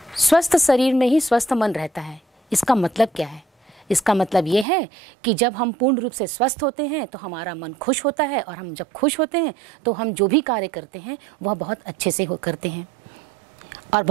स्वस्थ शरीर में ही स्वस्थ मन रहता है। इसका मतलब क्या है? इसका मतलब ये है कि जब हम पूर्ण रूप से स्वस्थ होते हैं तो हमारा मन खुश होता है, और हम जब खुश होते हैं तो हम जो भी कार्य करते हैं वह बहुत अच्छे से करते हैं, और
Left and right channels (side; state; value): left; drops out; at 4.7 s